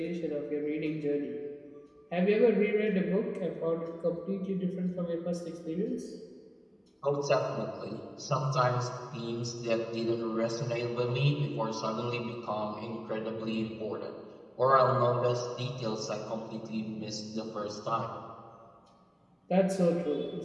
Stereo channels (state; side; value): identical; both; correlation 1.00